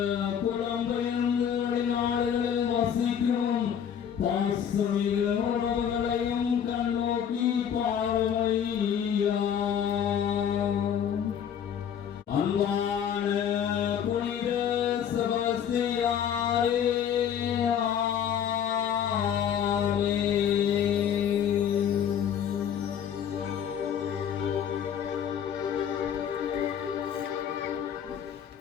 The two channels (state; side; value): quieter; right; 8.7 dB